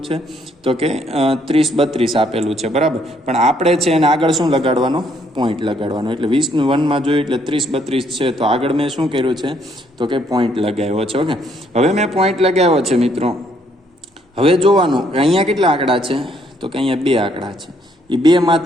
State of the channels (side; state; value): both; normal; correlation 0.69